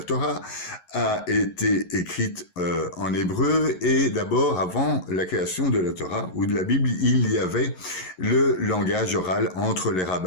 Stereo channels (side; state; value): right; late; 11 ms